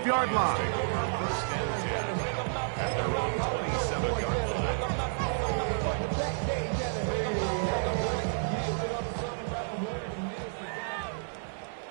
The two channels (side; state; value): left; silent; 57 dB below the other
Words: line. At their own 27-yard line.